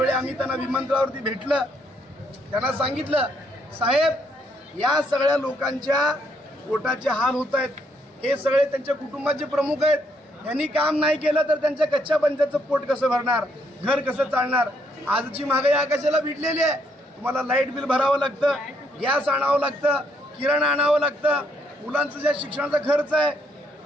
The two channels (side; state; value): both; normal; correlation 0.72